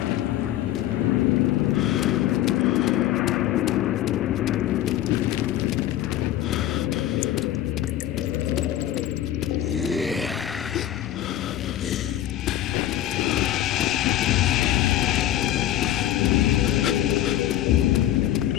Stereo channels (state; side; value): quieter; right; 12.8 dB